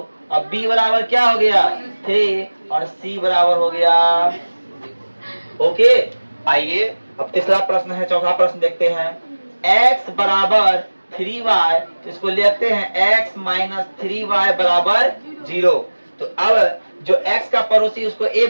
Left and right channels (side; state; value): both; inverted; correlation -1.00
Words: अब b बराबर क्या हो गया? 3, और c बराबर हो गया। ओके, आइए अब तीसरा प्रश्न है, चौथा प्रश्न देखते हैं। x बराबर 3y, तो इसको लेते हैं x माइनस 3y बराबर 0। तो अब जो x का पड़ोसी उसको a